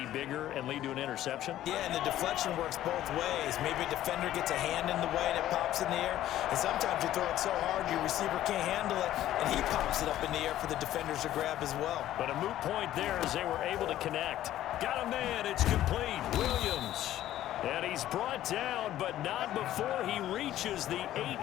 bigger and lead to an interception? Yeah, and the deflection works both ways. Maybe a defender gets a hand in the way and it pops in the air. And sometimes you throw it so hard your receiver can't handle it, and he pops it up in the air for the defenders to grab as well. But a moot point there as they were able to connect. Got a man, it's complete. Williams. And he's brought down, but not before he reaches the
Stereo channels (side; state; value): right; quieter; 13.2 dB